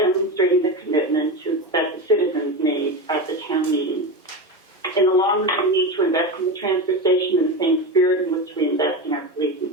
the commitment that the citizens made at the town meeting. In the long run, we need to invest in the transfer station in the same spirit in which we invest in our police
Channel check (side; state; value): both; normal; correlation 0.20